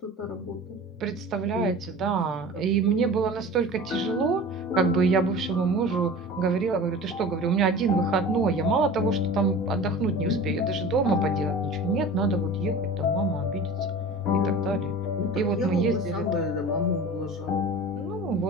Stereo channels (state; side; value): normal; both; correlation 0.37